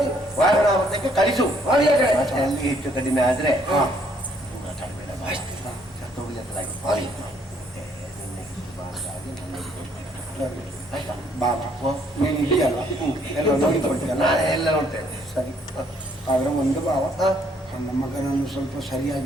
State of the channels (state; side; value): normal; both; correlation 0.66